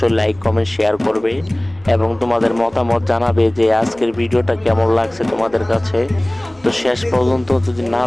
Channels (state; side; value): noise; left; hum, 29 dB below the sound